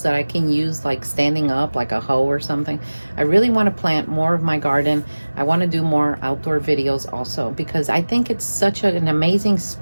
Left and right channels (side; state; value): both; inverted; correlation -1.00